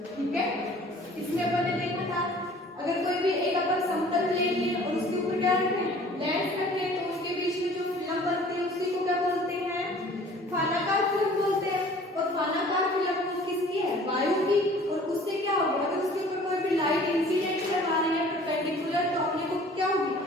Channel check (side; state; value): both; normal; correlation 0.50